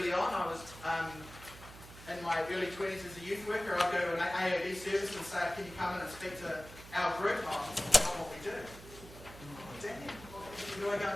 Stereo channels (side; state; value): right; noise; hum, 17 dB below the sound